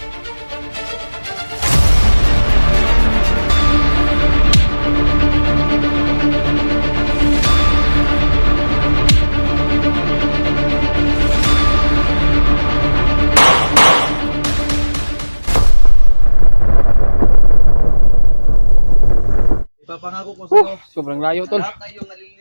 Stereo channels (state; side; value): inverted; both; correlation -1.00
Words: Ipapangako ko sa'yo. Sobrang layo tol.